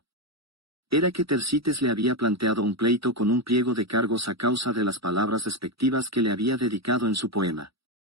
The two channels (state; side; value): late; left; 0.76 ms